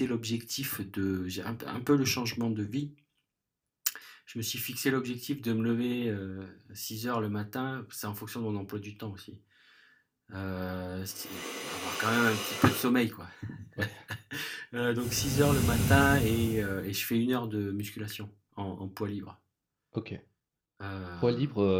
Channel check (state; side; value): identical; both; correlation 1.00